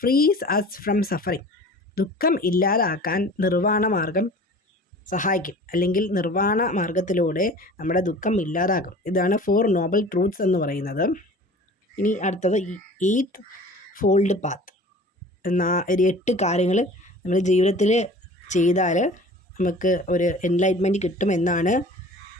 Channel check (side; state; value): both; normal; correlation 0.43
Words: frees us from suffering, ദുഃഖം ഇല്ലാതാക്കാൻ നിർവ്വാണ മാർഗം സഹായിക്കും, അല്ലെങ്കിൽ നിർവ്വാണ മാർഗത്തിലൂടെ നമ്മുടെ ദുഃഖം ഇല്ലാതാകും. ഇതാണ് 4 നോബൽ ട്രൂത്ത്സ് എന്ന് പറയുന്നത്. ഇനി അടുത്തത് 8th ഫോൾഡ് പാത്ത്. 8 കാര്യങ്ങൾ നമ്മൾ ജീവിതത്തിൽ ചെയ്താൽ നമുക്ക് ഒരു എൻലൈറ്റ്മെൻറ്റ് കിട്ടുമെന്നാണ്